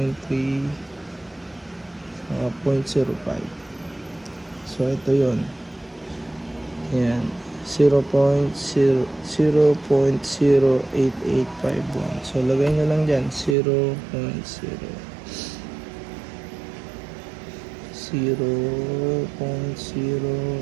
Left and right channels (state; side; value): drops out; left; at 13.6 s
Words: saka 0.05. So, ito yun. Ayan. 0.08851. So, lagay nyo lang dyan.